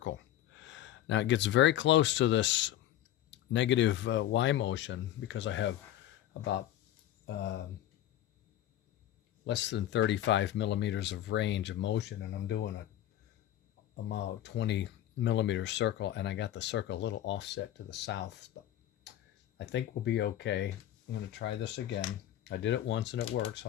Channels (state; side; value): quieter; right; 12.6 dB